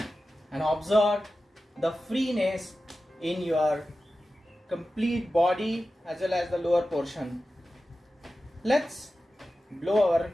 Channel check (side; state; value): both; normal; correlation 0.94